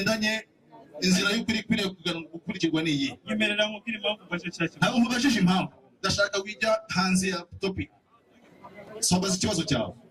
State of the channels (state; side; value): identical; both; correlation 1.00